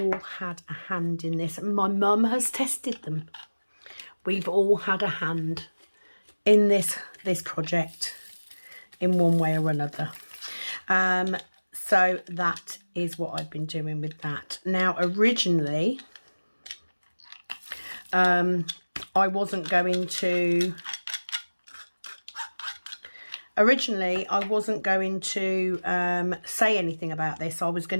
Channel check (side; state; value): both; inverted; correlation -1.00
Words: had a hand in this. My mum has tested them. We've all had a hand in this project in one way or another. So that is what I've been doing with that. Now, originally, I wasn't going to say anything about this. I was